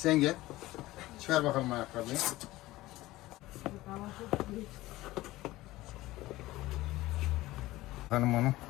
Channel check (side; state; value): right; quieter; 17.8 dB